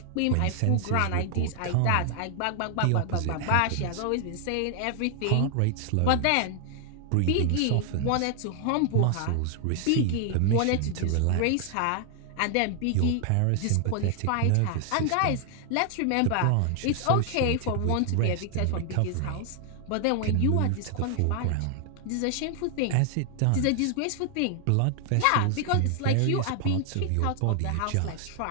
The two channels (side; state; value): both; different; correlation 0.00